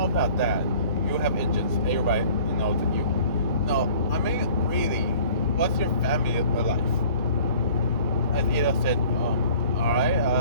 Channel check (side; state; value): both; inverted; correlation -0.50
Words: about that. You have engines. Everybody knows that you. No, I mean, really, what's your family like? As Ida said, alright,